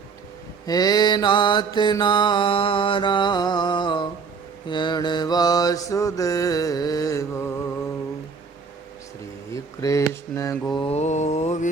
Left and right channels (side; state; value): left; quieter; 5.3 dB